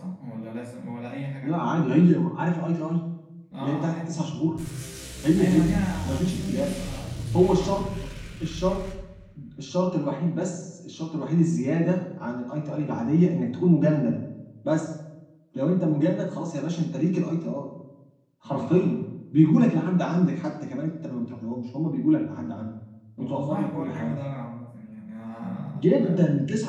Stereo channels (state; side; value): identical; both; correlation 1.00